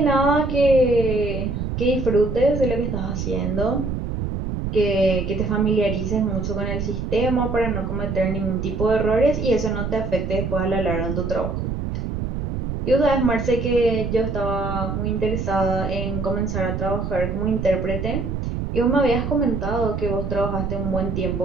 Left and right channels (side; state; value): right; noise; rumble, 3 dB below the sound